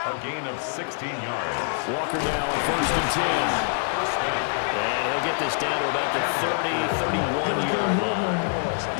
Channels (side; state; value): right; silent; digital silence